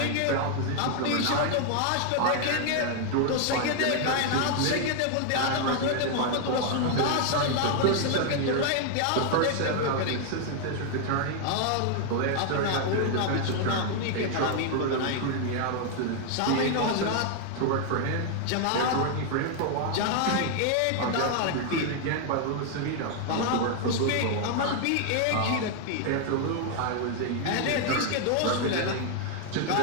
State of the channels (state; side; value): different; both; correlation 0.00